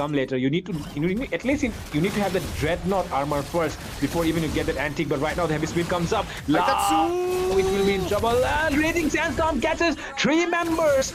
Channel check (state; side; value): identical; both; correlation 1.00